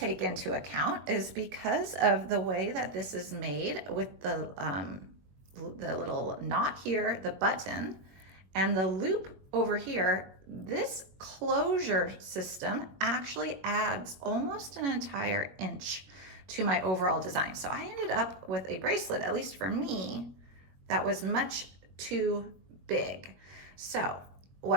into account is because of the way that this is made with the little knot here, the button, and the loop over here, this closure system actually adds almost an entire inch to my overall design. So I ended up with a bracelet, at least for me, that was much too big. So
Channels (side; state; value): left; late; 21 ms